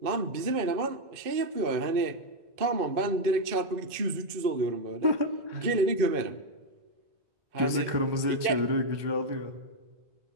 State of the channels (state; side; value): late; left; 2.5 ms